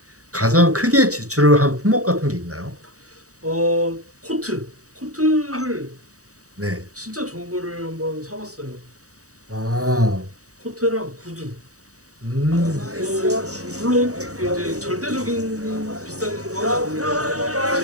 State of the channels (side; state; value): left; late; 0.66 ms